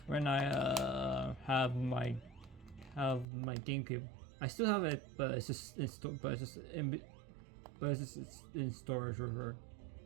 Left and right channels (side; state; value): left; drops out; at 3.2 s